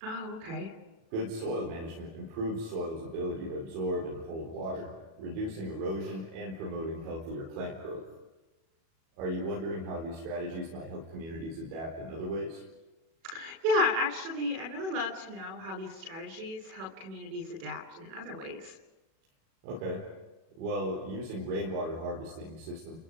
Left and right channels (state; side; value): late; left; 37 ms